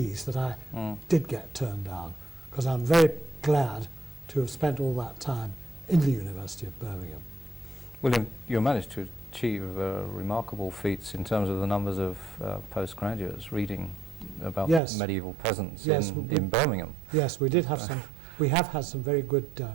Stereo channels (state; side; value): drops out; left; at 14.8 s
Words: that I did get turned down, because I'm very glad to have spent all that time in the University of Birmingham. William, you managed to achieve remarkable feats in terms of the numbers of postgraduates reading about medieval peasants in Birmingham. Yes, we did have some. We have had some very good,